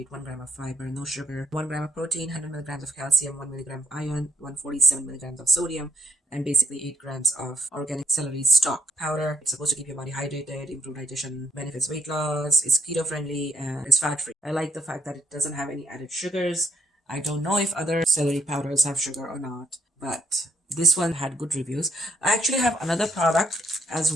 1 gram of fiber, no sugar, 1 gram of protein, 100 milligrams of calcium, 1 milligram of iron, 147 milligrams of sodium, and basically 8 grams of organic celery stalk powder. It's supposed to keep your body hydrated, improve digestion, benefits weight loss, it's keto friendly, and it's fat free. I like the fact that it doesn't have any added sugars. I don't know if other celery powders have sugar or not, but this one had good reviews. I actually have another product as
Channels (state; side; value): normal; both; correlation 0.71